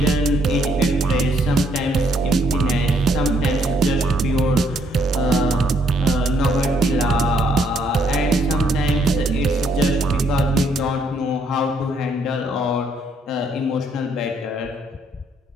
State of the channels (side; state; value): both; normal; correlation 0.70